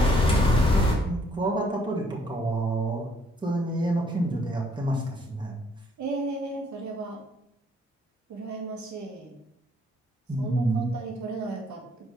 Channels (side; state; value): both; normal; correlation 0.66